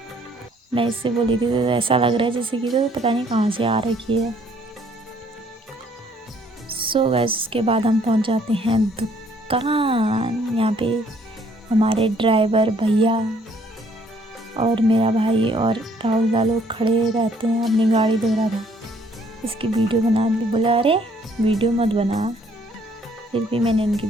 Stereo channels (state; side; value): normal; both; correlation 0.63